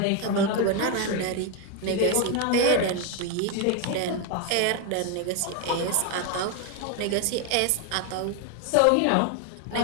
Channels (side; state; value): both; different; correlation 0.01